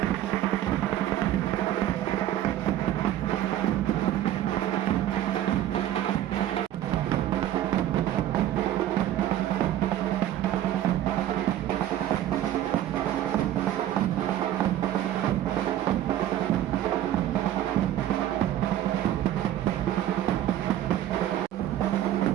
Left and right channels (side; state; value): left; quieter; 12.4 dB